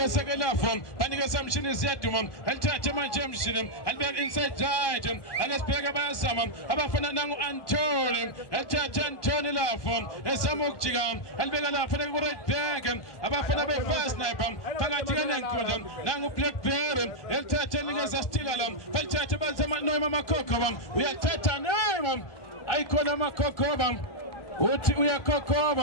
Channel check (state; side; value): late; right; 1.2 ms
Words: ke lapho banikeza mshini ziyaduma alithathe manje emshini alibeka inside right akasibheke bayazama abafana nangu Antony alithathe Antony lapho esama ukujika alibeka lapha ku right back abafana be fast sniper phakathi nenkundla nangu Blackberry elithathe nikeza Stilala balithathe bazama noyima amakhokho uyathatha nema ayikona amakhokho uthi